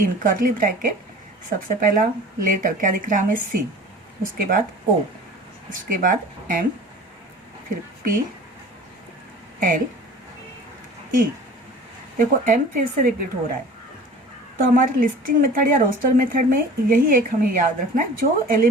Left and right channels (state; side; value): normal; both; correlation 0.42